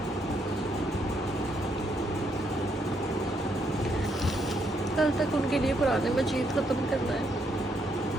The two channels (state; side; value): normal; both; correlation 0.75